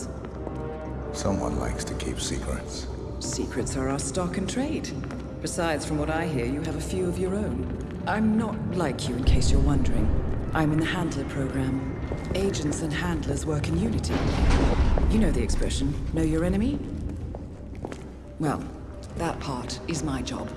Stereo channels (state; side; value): identical; both; correlation 1.00